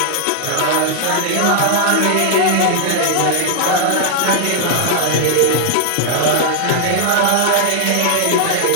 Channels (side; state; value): both; different; correlation -0.01